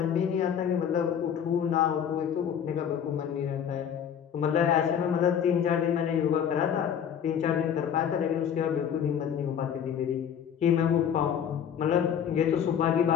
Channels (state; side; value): quieter; right; 8.5 dB